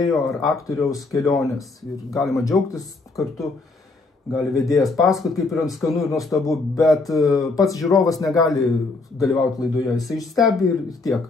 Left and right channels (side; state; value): right; quieter; 3.6 dB